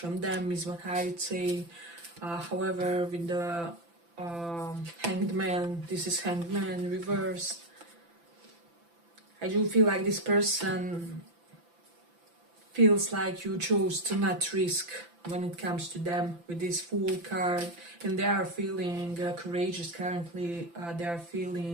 them, is what I would say. However, with the Hanged Man, this is Hanged Man reversed. I do feel like this person feels like you chose to not risk when it comes to them with this Fool card, and they are feeling courageous currently. They are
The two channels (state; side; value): late; left; 5.9 ms